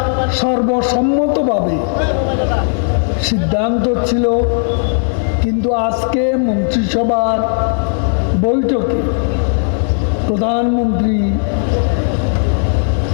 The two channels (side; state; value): right; silent; digital silence